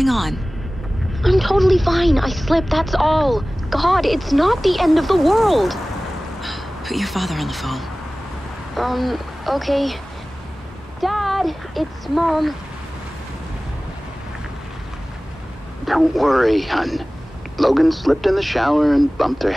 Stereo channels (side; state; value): both; normal; correlation 0.98